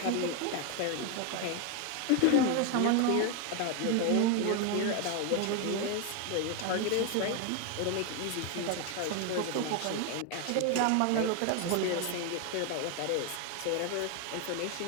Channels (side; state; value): both; different; correlation 0.01